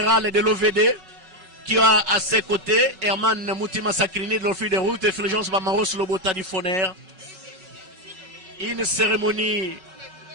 de l'OVD qui a à ses côtés Herman Moutima Sakrini de l'Office des routes et Fulgence Bamaros Lobota du FONER. Une cérémonie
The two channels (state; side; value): late; left; 5.4 ms